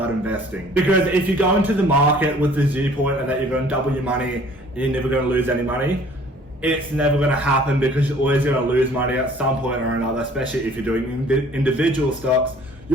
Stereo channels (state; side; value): normal; both; correlation 0.54